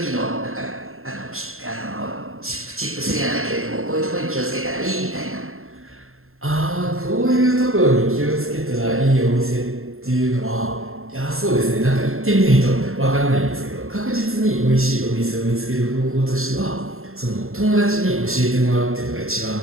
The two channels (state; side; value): late; left; 0.61 ms